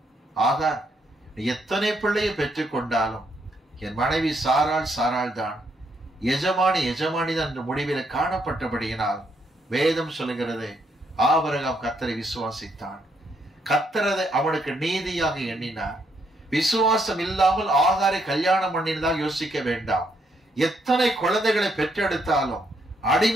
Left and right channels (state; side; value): normal; both; correlation 0.74